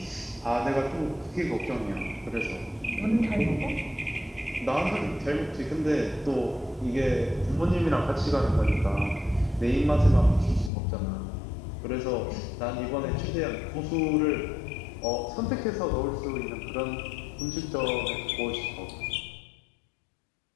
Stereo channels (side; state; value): right; drops out; at 10.7 s